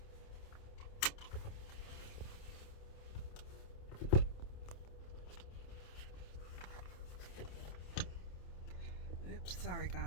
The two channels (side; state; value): right; late; 27 ms